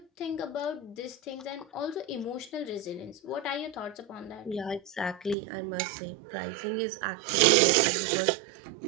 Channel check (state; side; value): drops out; left; at 5.4 s